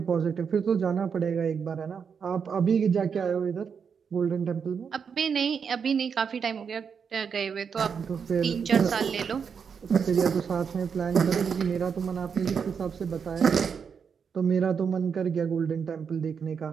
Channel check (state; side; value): quieter; left; 6.5 dB